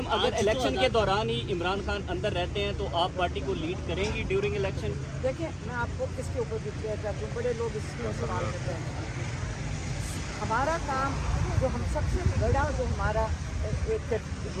अगर इलेक्शन के दौरान ही इमरान खान अंदर रहते हैं तो आप पार्टी को लीड करेंगी ड्यूरिंग इलेक्शन? देखिए, मैं आपको इसके ऊपर भी क्लियर करती हूँ, बड़े लोग इसमें सवाल करते हैं। हमारा काम जो हम सबसे बड़ा जो हमारा एक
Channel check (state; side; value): identical; both; correlation 1.00